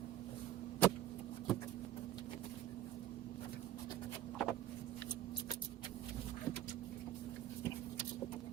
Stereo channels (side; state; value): left; quieter; 12.1 dB